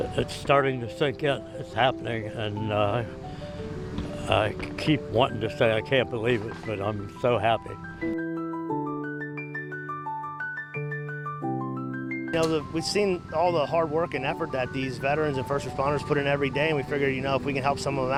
it's starting to sink in. It's happening, and I keep wanting to say I can't believe it, but I'm so happy. You know, we've seen all the hard work and effort that these veterans and first responders put in every day, and we figured, you know, if we can help some of them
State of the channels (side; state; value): both; identical; correlation 1.00